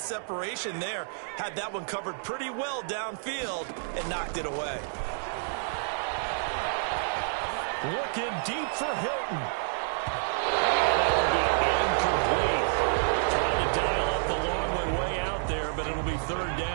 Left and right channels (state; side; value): silent; left; digital silence